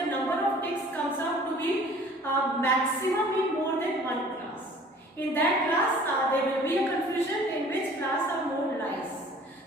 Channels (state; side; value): normal; both; correlation 0.50